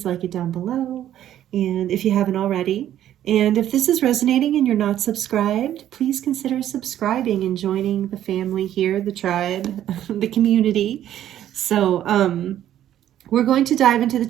like it down below. And if you haven't already, and if this is resonating and you're not subscribed, please consider subscribing and joining the family here, the tribe, the community. So we're going to dive into the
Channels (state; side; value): quieter; left; 11.6 dB